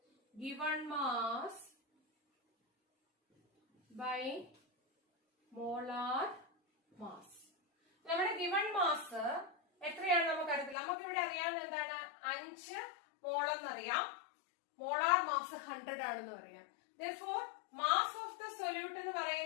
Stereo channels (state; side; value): drops out; right; at 10.8 s